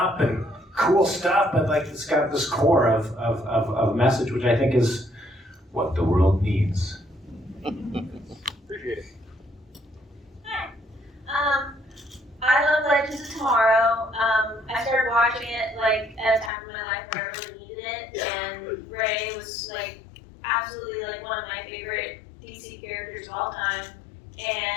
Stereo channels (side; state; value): right; drops out; at 16.5 s